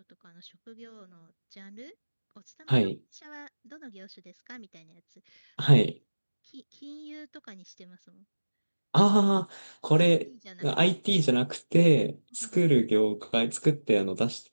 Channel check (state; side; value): inverted; both; correlation -1.00